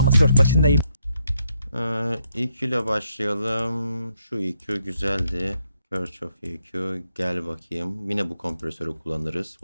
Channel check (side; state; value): both; inverted; correlation -0.77